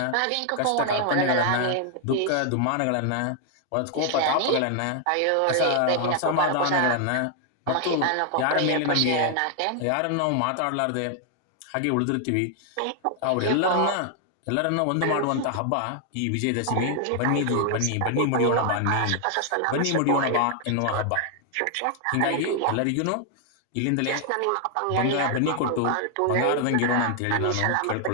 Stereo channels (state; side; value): different; both; correlation 0.00